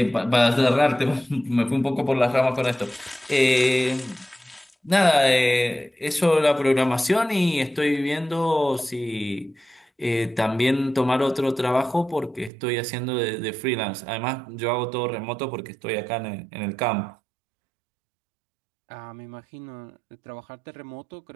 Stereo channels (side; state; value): left; drops out; at 12.5 s